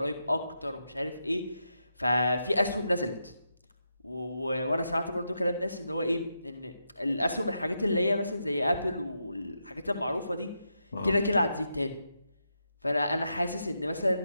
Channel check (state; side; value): inverted; both; correlation -0.84